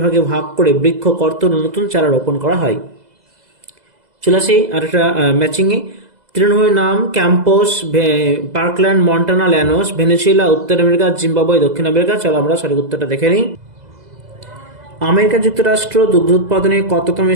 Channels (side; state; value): left; late; 2.0 ms